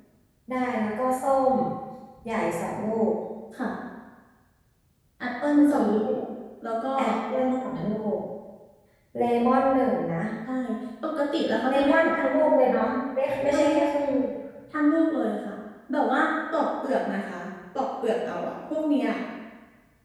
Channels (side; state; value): both; identical; correlation 1.00